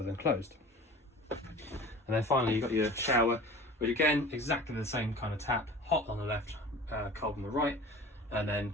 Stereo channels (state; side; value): normal; both; correlation 0.40